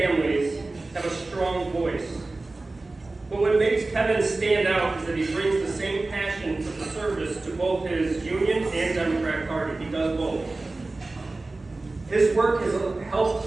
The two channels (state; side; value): quieter; left; 3.2 dB